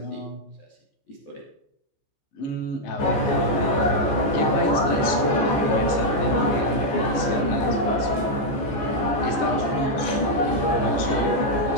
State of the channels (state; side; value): late; right; 14 ms